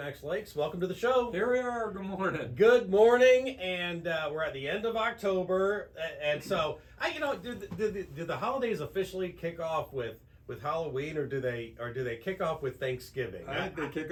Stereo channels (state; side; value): identical; both; correlation 1.00